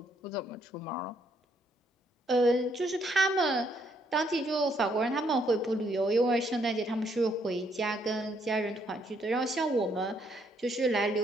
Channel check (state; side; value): normal; both; correlation 0.71